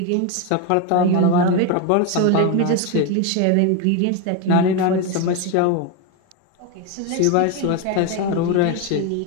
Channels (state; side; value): different; both; correlation 0.02